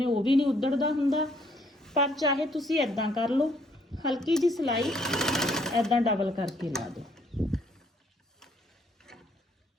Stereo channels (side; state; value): both; normal; correlation 0.66